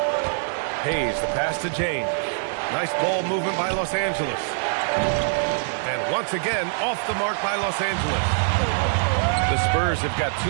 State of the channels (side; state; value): left; silent; 63 dB below the other